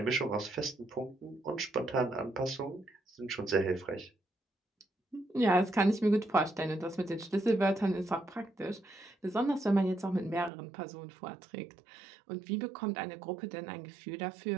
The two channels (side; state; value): left; drops out; at 10.5 s